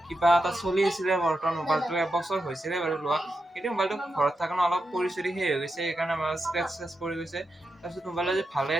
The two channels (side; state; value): both; normal; correlation 0.87